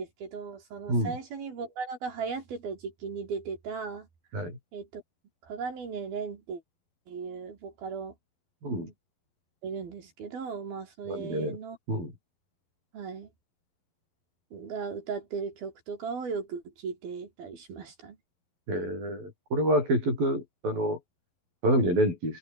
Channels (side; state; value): left; late; 12 ms